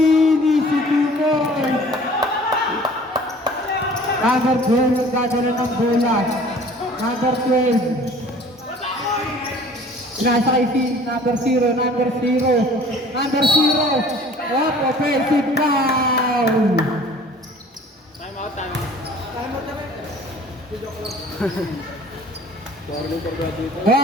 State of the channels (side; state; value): both; normal; correlation 0.49